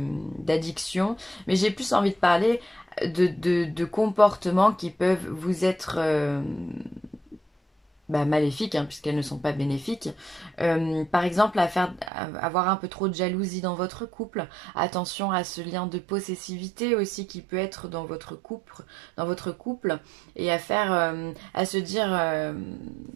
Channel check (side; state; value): left; drops out; at 12.1 s